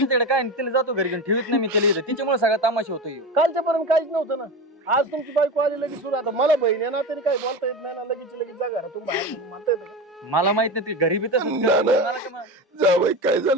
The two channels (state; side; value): normal; both; correlation 0.24